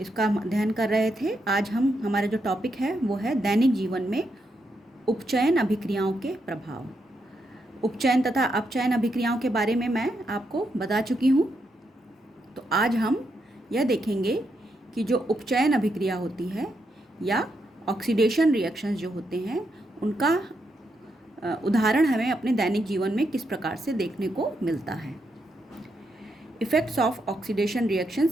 हम अध्ययन कर रहे थे। आज हमारा जो टॉपिक है वो है दैनिक जीवन में उपचयन अभिक्रियाओं के प्रभाव। उपचयन तथा अपचयन अभिक्रियाओं के बारे में मैं आपको बता चुकी हूँ। तो आज हम यह देखेंगे कि जो उपचयन अभिक्रिया होती है या ऑक्सीडेशन रिएक्शंस जो होते हैं उनका उदाहरण हमें अपने दैनिक जीवन में किस प्रकार से देखने को मिलता है। Effects of oxidation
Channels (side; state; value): both; normal; correlation 0.81